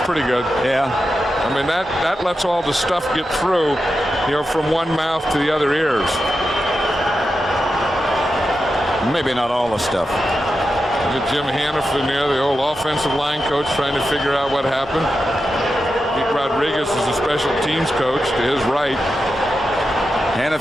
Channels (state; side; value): normal; both; correlation 0.89